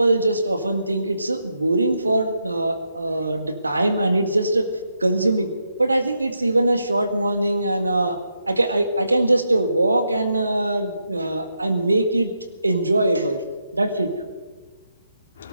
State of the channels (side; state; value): both; inverted; correlation -0.82